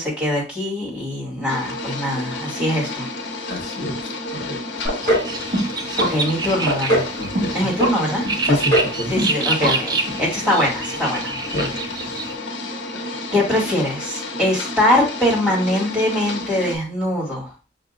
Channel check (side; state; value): both; normal; correlation 0.37